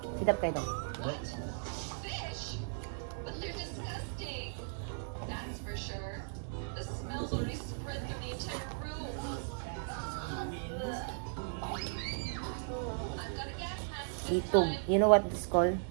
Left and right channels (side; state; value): left; silent; digital silence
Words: Sidap kayo dong. Litog. You know what it's called?